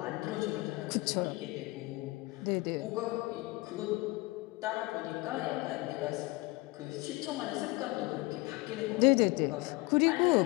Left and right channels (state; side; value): quieter; right; 22.6 dB